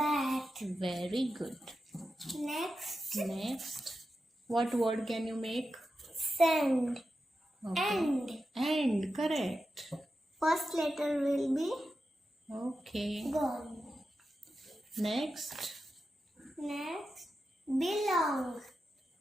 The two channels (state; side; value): normal; both; correlation 0.90